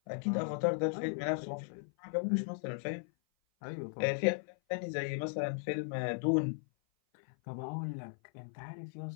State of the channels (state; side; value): silent; right; 53 dB below the other